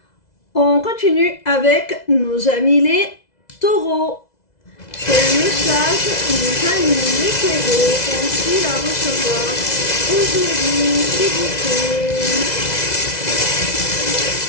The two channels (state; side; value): late; right; 2.0 ms